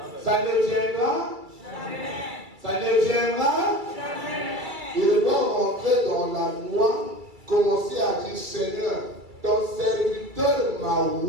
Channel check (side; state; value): left; late; 2.3 ms